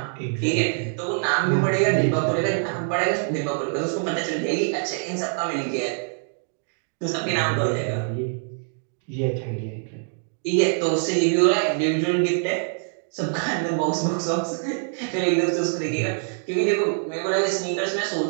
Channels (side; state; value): left; silent; 62 dB below the other